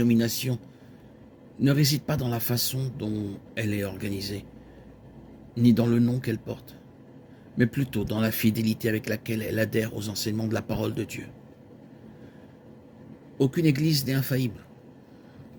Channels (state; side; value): identical; both; correlation 1.00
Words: ne réside pas dans la façon dont elle est organisée, ni dans le nom qu'elle porte, mais plutôt dans la fidélité avec laquelle elle adhère aux enseignements de la parole de Dieu. Aucune église n'est infaillible,